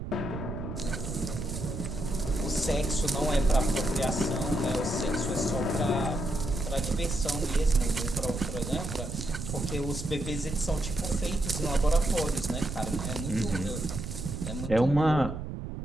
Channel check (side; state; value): right; noise; rumble, 6 dB below the sound